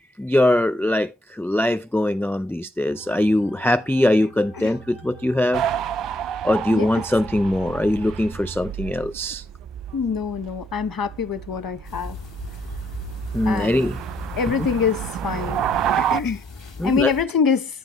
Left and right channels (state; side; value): normal; both; correlation 0.73